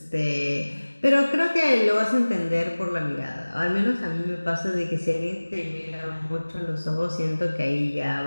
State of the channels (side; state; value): both; inverted; correlation -1.00